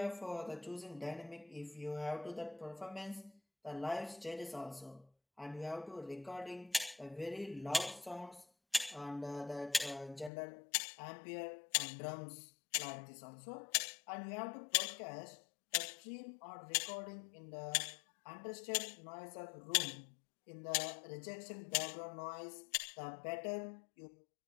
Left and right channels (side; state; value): right; drops out; at 10.3 s